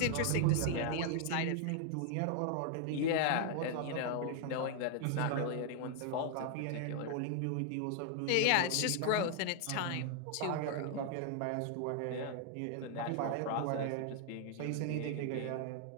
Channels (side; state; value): both; different; correlation 0.00